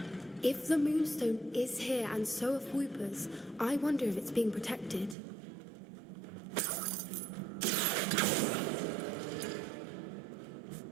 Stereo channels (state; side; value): drops out; left; at 5.2 s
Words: If the moonstone is here and so are Fwooper's, I wonder if it's being protected.